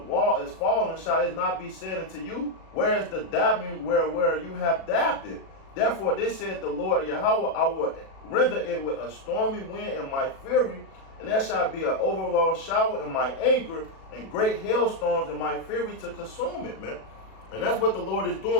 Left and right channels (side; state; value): right; late; 37 ms